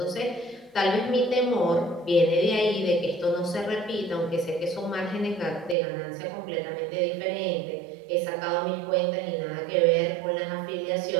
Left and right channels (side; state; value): left; drops out; at 5.8 s